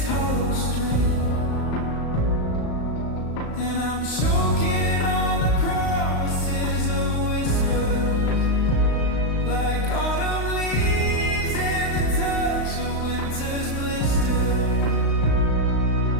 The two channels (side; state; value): right; late; 35 ms